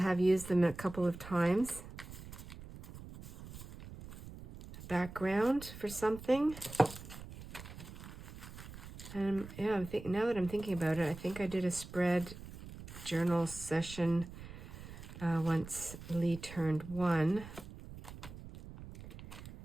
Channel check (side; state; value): right; noise; rumble, 14 dB below the sound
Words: used them a couple of times. Background for something. And yeah, now that I'm thinking about it, I think I did a spread journal session once Lee turned 1.